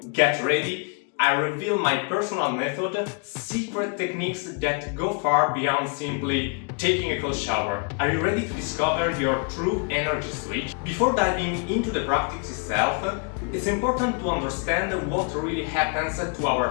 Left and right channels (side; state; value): right; quieter; 36.7 dB